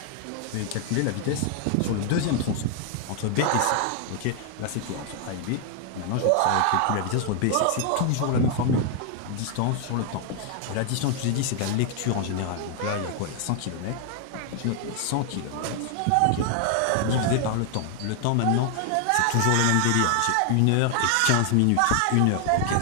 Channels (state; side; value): different; both; correlation 0.00